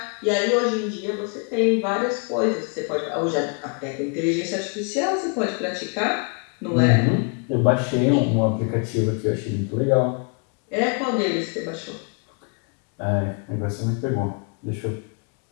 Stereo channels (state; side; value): quieter; right; 36.6 dB